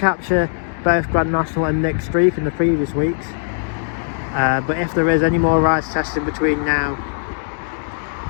both Grand National and Nick Streak in the previous weeks, but if there is any more rides testing between now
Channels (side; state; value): right; silent; digital silence